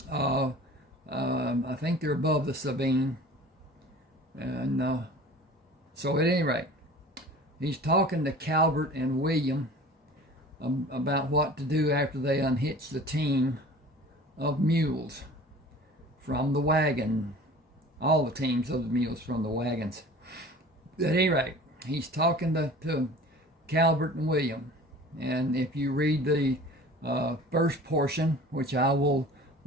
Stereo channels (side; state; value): both; normal; correlation 0.43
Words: I think they're above the Sabine, and so at any rate, he's talking to Calvert and William about what to do after they unhitch the team of mules from the wagon, all the teams of the mules from the wagons. At any rate, he's talking to Calvert and William, and if you read the first portion, which I will